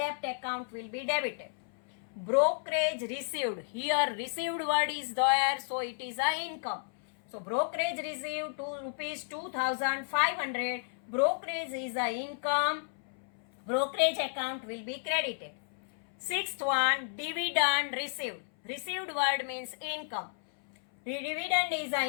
account will be debited. Brokerage received. Here received word is there, so it is a income. So brokerage received rupees 2,500. Brokerage is a income. Brokerage account will be credited. Sixth one, dividend received. Received word means income. Dividend is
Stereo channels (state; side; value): silent; right; 56 dB below the other